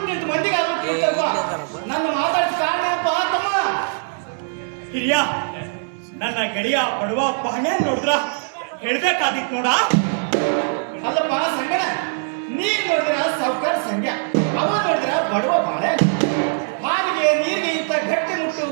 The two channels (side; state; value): left; silent; 65 dB below the other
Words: ಮಂದಿಗಾದ್ರೂ ತಿಳಿತಪ್ಪ. ನನ್ನ ಮಾತಾಡಿದ ಕಾರಣಪ್ಪ ತಮ್ಮ. ಹಿರಿಯ ನನ್ನ ಗೆಳೆಯ ಬಡವ ಬಾಳೆ ನೋಡಿದ್ರ ಹೇಳ್ಬೇಕಾಗಿತ್ತು ನೋಡ. ಅಲ್ಲಪ್ಪ ಸಂಗಣ, ನೀನ್ ನೋಡಿದ್ರ ಸಾವುಕಾರ ಸಂಖ್ಯಾ, ಅವ ನೋಡಿದ್ರ ಬಡವ ಬಾಳೆ. ಹಾಗೆ ನೀರಿಗೆ ಇಂತ ಗಟ್ಟಿ ಮುಟ್ಟು